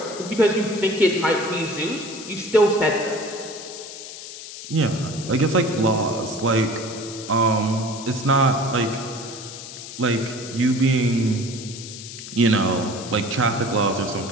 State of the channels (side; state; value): left; noise; hiss, 12 dB below the sound